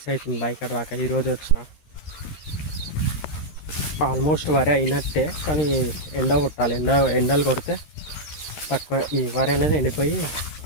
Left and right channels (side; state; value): right; late; 13 ms